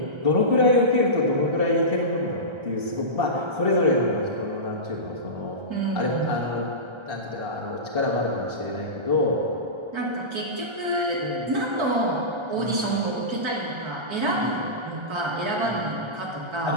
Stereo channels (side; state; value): left; late; 1.3 ms